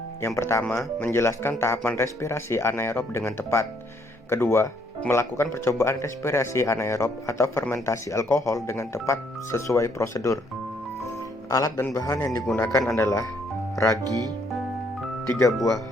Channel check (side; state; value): both; normal; correlation 0.69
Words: yang pertama, menjelaskan tahapan respirasi anaerob dengan tepat. Kedua, melakukan percobaan respirasi anaerob atau fermentasi alkohol dengan tepat sesuai prosedur. Alat dan bahan yang digunakan adalah ragi, 3 buah